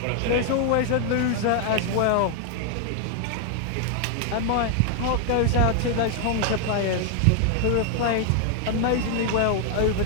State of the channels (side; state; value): both; different; correlation 0.00